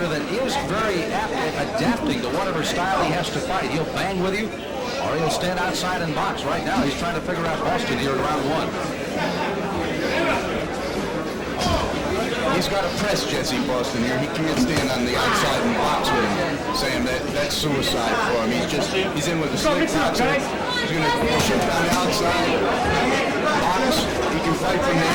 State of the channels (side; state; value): both; identical; correlation 1.00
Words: that is very apt at adapting to whatever style he has to fight. He'll bang with you, or he'll stand outside and box. Right now, he's trying to figure out Boston here in round 1. He's got to press Jessie Boston here. He can't stand on the outside and box with him. Sam, that's suicide for him. He's in with a slick boxer. He's going to shift on the outside, box. He can fight from the